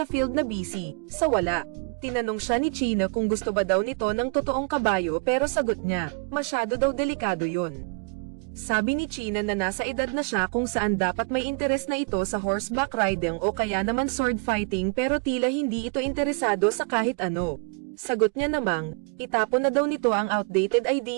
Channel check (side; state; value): left; quieter; 34.2 dB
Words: field na busy, sa wala. Tinanong siya ni China kung gusto ba daw nito ng totoong kabayo pero sagot niya, masyado daw delikado yun. Sabi ni China na nasa edad na siya kung saan dapat may interes na ito sa horseback riding o kaya naman sword fighting pero tila hindi ito interesado sa kahit ano. Sagot niya namang, itapon na daw nito ang outdated